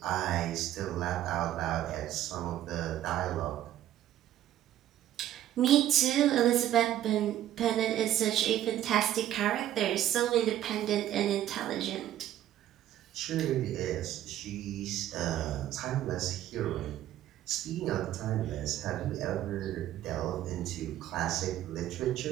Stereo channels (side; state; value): left; quieter; 12.5 dB